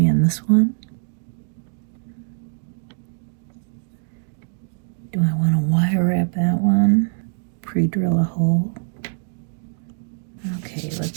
in this one. Do I want to wire wrap that one? Pre-drill a hole. Okay,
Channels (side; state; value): left; silent; digital silence